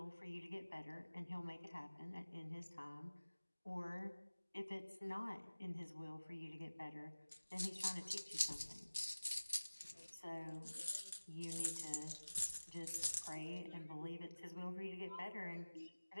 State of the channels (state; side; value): inverted; both; correlation -1.00